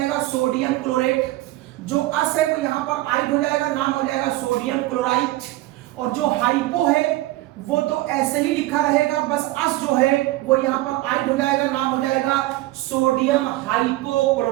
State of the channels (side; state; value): left; quieter; 17.5 dB